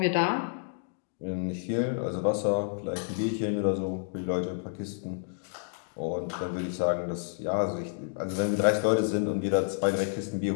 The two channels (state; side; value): silent; right; digital silence